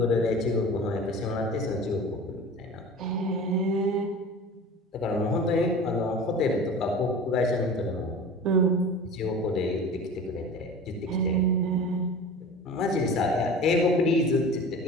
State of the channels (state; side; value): normal; both; correlation 0.37